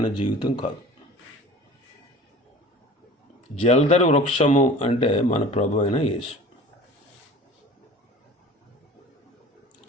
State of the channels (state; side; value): normal; both; correlation 0.42